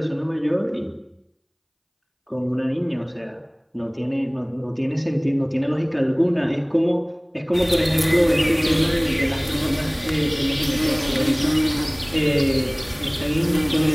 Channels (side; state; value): both; identical; correlation 1.00